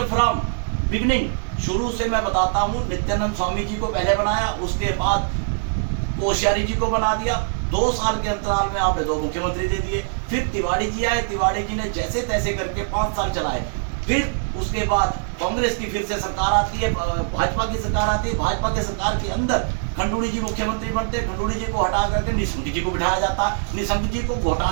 फ्रॉम बिगनिंग, शुरू से मैं बताता हूँ, नित्यानंद स्वामी जी को पहले बनाया, उसके बाद कोश्यारी जी को बना दिया। 2 साल के अंतराल में आपने 2 मुख्यमंत्री दे दिए। फिर तिवारी जी आए, तिवारी जी ने जैसे तैसे करके 5 साल चलाए। फिर उसके बाद कांग्रेस की फिर से सरकार आती है, भाजपा की सरकार आती है। भाजपा के सरकार के अंदर खंडूड़ी जी मुख्यमंत्री बनते, खंडूड़ी जी को हटा करके निशंक जी को बिठाया जाता। निशंक जी को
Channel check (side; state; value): left; silent; digital silence